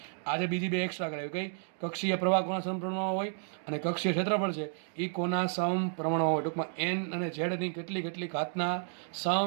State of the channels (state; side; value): silent; left; 56 dB below the other